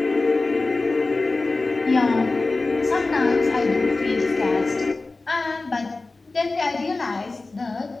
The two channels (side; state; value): right; quieter; 3.4 dB